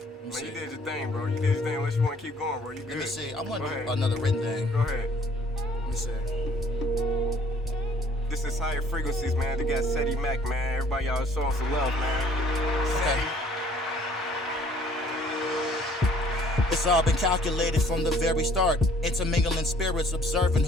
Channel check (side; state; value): both; normal; correlation 0.58